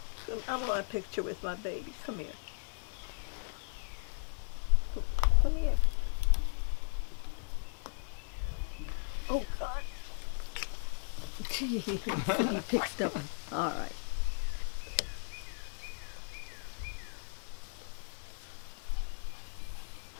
want a picture with my baby. Come here. Come here. Oh, God. He picked up. All right.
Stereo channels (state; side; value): silent; right; digital silence